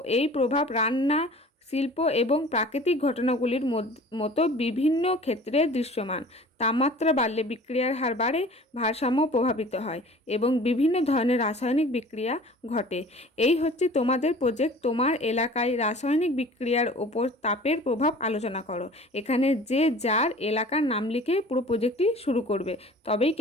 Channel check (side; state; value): both; normal; correlation 0.45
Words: এই প্রভাব রান্না, শিল্প এবং প্রাকৃতিক ঘটনাগুলির মতো বিভিন্ন ক্ষেত্রে দৃশ্যমান। তাপমাত্রা বাড়লে বিক্রিয়ার হার বাড়ে, ভারসাম্য প্রভাবিত হয় এবং বিভিন্ন ধরনের রাসায়নিক বিক্রিয়া ঘটে। এই হচ্ছে তোমাদের প্রজেক্ট। তোমার এলাকায় রাসায়নিক বিক্রিয়ার ওপর তাপের প্রভাব আলোচনা করো। এখানে যে যার এলাকার নাম লিখে পুরো প্রজেক্টটি শুরু করবে, তবেই